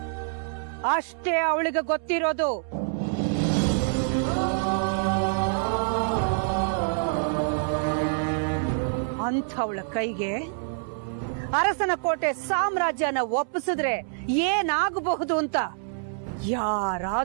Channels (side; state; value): left; silent; 61 dB below the other